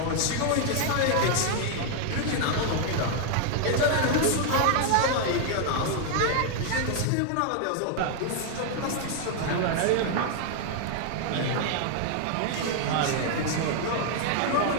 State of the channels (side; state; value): both; different; correlation 0.00